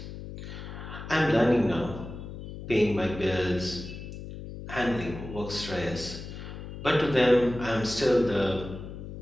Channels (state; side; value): noise; left; hum, 10 dB below the sound